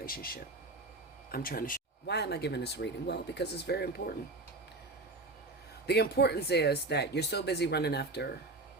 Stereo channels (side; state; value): left; quieter; 3.1 dB